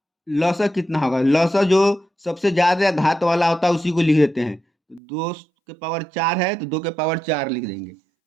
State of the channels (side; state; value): left; drops out; at 5.0 s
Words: लौसा कितना होगा? लौसा जो सबसे ज़्यादा घात वाला होता है उसी को लिख देते हैं, 2 के पावर 4 है तो 2 के पावर 4 लिख देंगे,